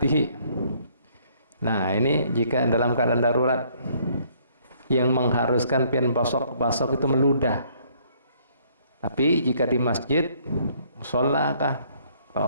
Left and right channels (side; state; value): both; inverted; correlation -0.64